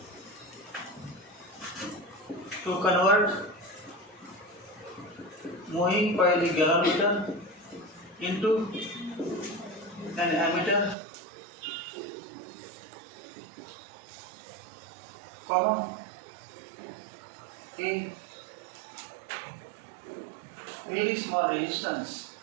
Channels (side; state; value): left; drops out; at 11.0 s